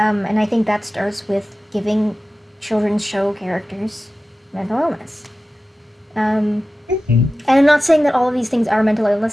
I think that starts with giving children's show characters mental illness. And I'm not saying that all of these things are mental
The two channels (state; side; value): normal; both; correlation 0.95